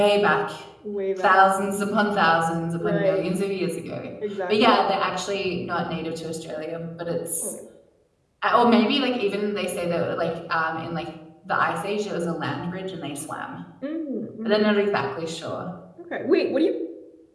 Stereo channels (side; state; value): both; identical; correlation 1.00